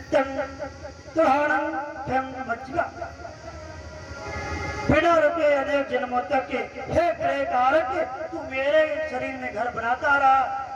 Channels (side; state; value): both; identical; correlation 1.00